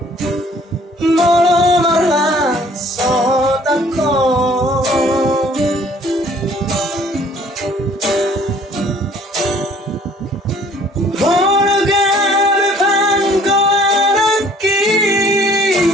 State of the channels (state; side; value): normal; both; correlation 0.56